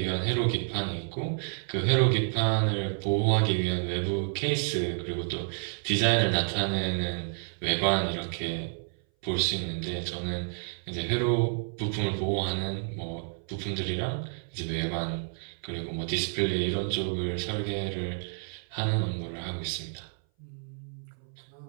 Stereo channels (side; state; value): left; silent; 58 dB below the other